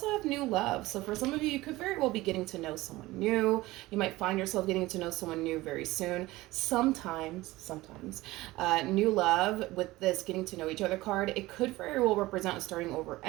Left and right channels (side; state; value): left; quieter; 18.9 dB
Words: have new love. So for some of you, you could very well be getting to know someone new. You might find yourself getting to know someone new very soon. Sometimes, new love with this getting to know each other card, it could very well represent a starting over